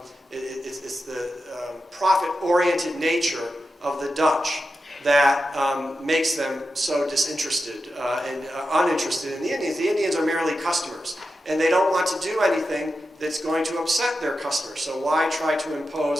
profit-oriented nature of the Dutch that makes them so disinterested and uninterested in the Indians. The Indians are merely customers, and they don't want to do anything that's going to upset their customers. So why try to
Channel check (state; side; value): normal; both; correlation 0.90